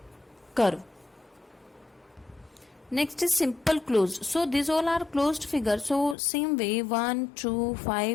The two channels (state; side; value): drops out; right; at 6.2 s